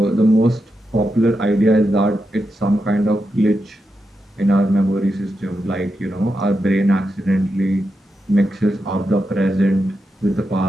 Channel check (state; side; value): normal; both; correlation 0.87